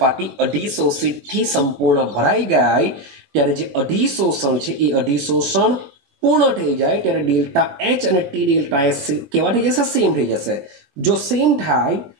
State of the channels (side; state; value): left; late; 22 ms